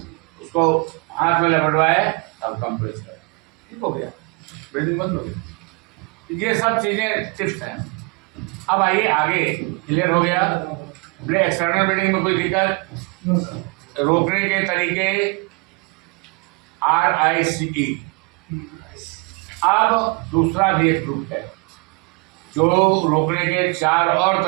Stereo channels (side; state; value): left; quieter; 31.0 dB